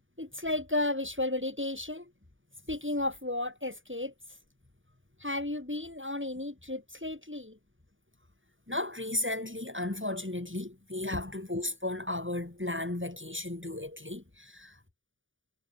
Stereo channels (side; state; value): left; late; 0.57 ms